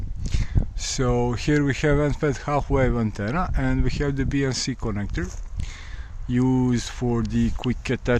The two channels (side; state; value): both; identical; correlation 1.00